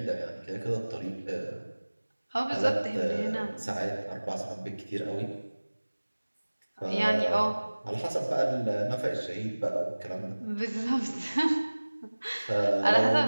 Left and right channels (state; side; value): inverted; both; correlation -1.00